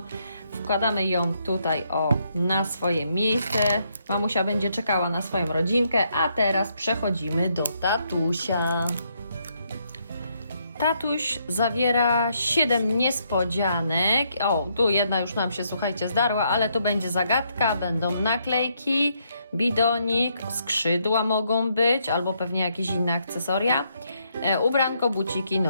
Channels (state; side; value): inverted; both; correlation -0.75